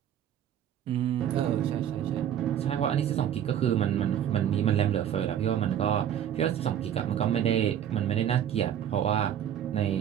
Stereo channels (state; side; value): quieter; left; 10.0 dB